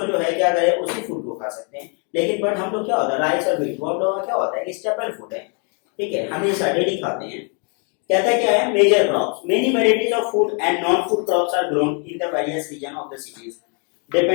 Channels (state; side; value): quieter; right; 38.2 dB